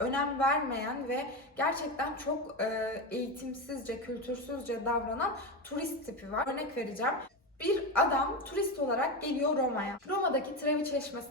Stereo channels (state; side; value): normal; both; correlation 0.16